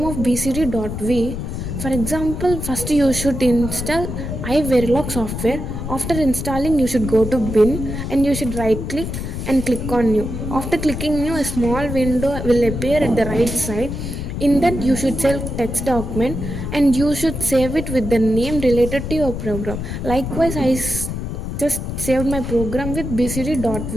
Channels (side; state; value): left; noise; rumble, 5 dB below the sound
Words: of bcd.v. For example, first you should install iVerilog software. After installing, you should go to bin and you should right click and click on new. After clicking new, a small window will appear at the right side. In that, you should select text document and you should save it with the name related to your program. Likewise, just saved my program with